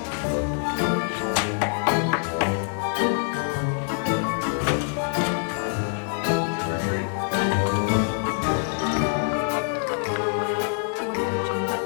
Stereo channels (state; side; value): silent; right; 55 dB below the other